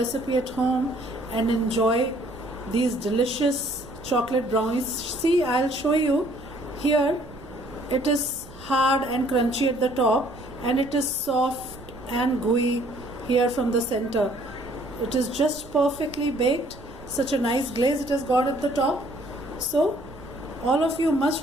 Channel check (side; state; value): right; noise; rumble, 19 dB below the sound